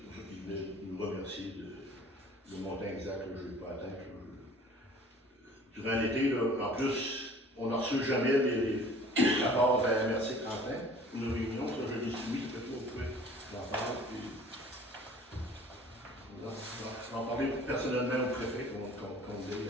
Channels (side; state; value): both; normal; correlation 0.49